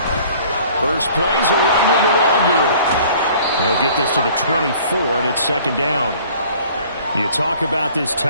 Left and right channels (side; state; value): both; inverted; correlation -0.52